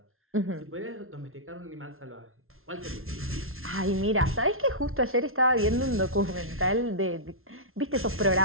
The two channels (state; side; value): late; left; 0.61 ms